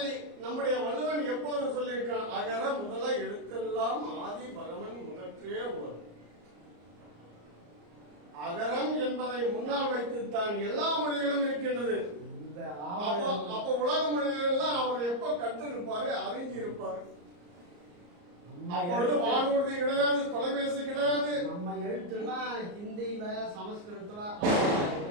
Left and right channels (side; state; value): left; late; 34 ms